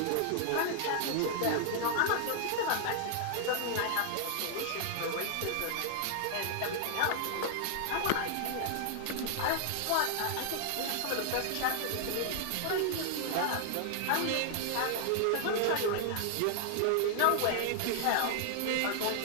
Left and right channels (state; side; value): different; both; correlation 0.00